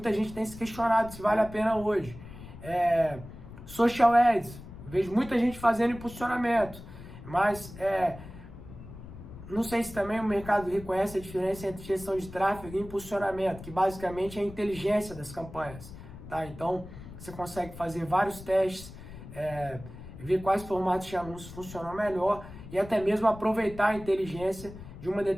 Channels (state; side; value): noise; left; rumble, 15 dB below the sound